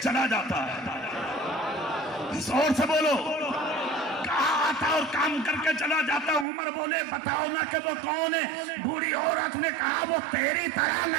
چلا جاتا ہے. زور سے بولو. کہا آتا اور کام کر کے چلا جاتا. عمر بولے بتاؤ نا کہ وہ کون ہے؟ بوڑھی عورت نے کہا وہ تیری طرح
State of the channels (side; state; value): left; drops out; at 6.5 s